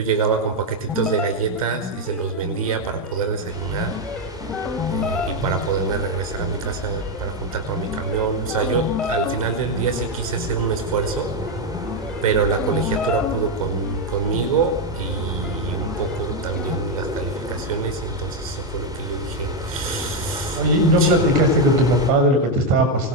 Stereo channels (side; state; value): both; normal; correlation 0.05